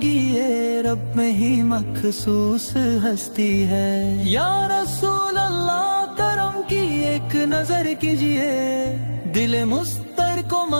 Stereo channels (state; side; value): inverted; both; correlation -1.00